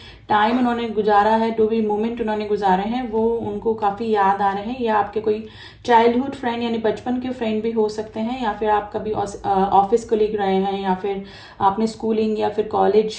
टाइम उन्होंने गुजारा है, जो भी मोमेंट उन्होंने गुजारे हैं वो उनको काफ़ी याद आ रहे हैं। या आपके कोई चाइल्डहुड फ्रेंड यानी बचपन के फ्रेंड भी हो सकते हैं, या फिर आप कभी ऑफिस कोलीग रहे हैं, या फिर आपने स्कूलिंग या फिर कॉलेज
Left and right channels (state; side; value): identical; both; correlation 1.00